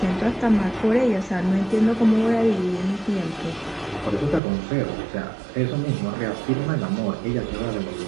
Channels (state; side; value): drops out; left; at 4.4 s